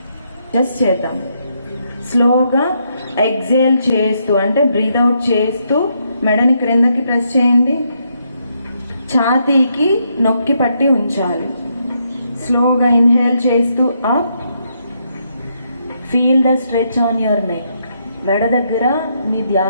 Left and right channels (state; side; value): inverted; both; correlation -0.77